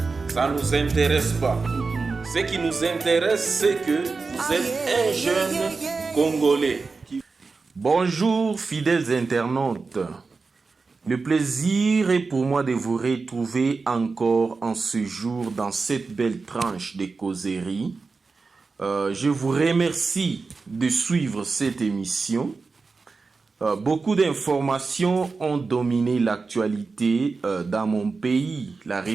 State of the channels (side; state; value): left; quieter; 4.3 dB